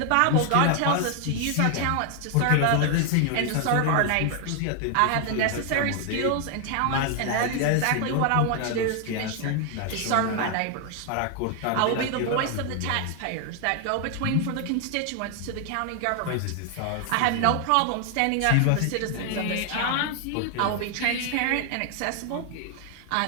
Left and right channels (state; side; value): different; both; correlation 0.00